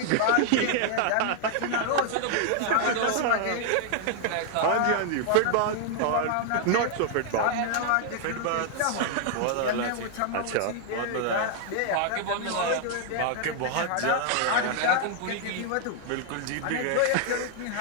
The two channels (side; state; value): both; different; correlation 0.00